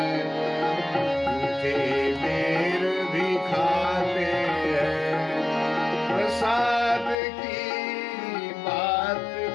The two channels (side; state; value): right; drops out; at 7.2 s